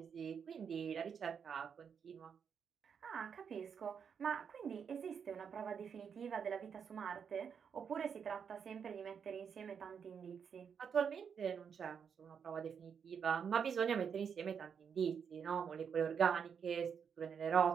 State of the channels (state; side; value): quieter; left; 7.0 dB